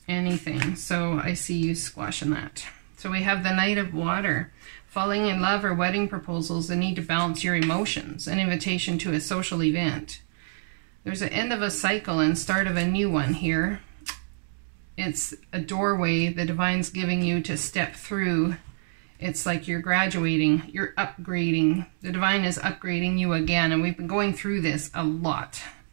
anything. So I see you squashing that. So we have the Knight of Water. Falling in love or wedding proposals, the need to balance your emotions, an invitation to a social event. There's an end of a cycle and start of a new one here. It's a doorway the divine's giving you to step through. It's like you're graduating, you're upgrading. The divine is upgrading you again, and we've been going through this a lot.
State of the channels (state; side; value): silent; left; digital silence